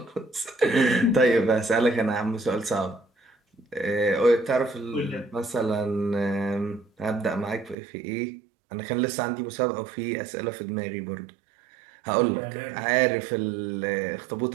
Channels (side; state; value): left; drops out; at 7.8 s